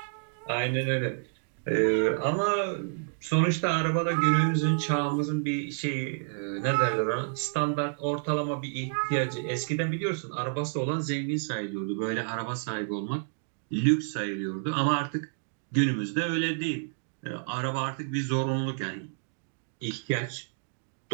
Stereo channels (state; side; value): silent; left; digital silence